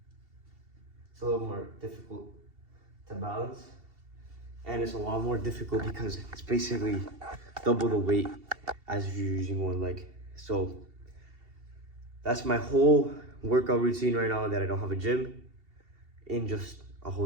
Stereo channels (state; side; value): late; left; 2.7 ms